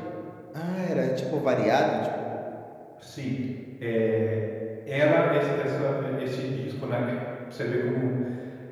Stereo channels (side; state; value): both; identical; correlation 1.00